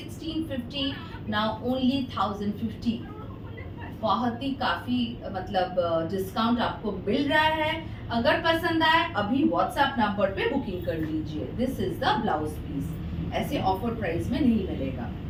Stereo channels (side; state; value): both; identical; correlation 1.00